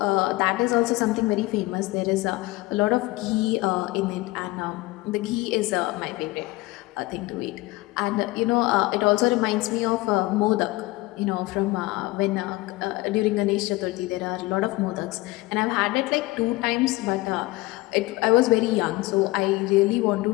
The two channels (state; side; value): quieter; right; 20.6 dB